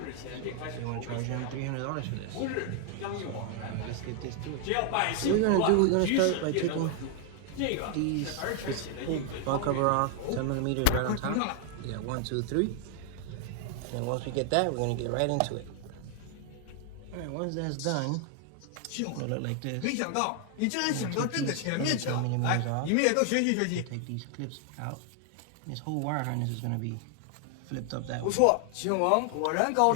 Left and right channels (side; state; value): both; different; correlation 0.00